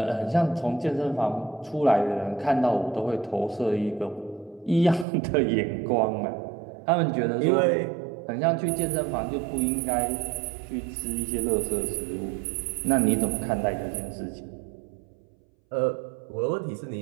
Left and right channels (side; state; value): left; drops out; at 5.1 s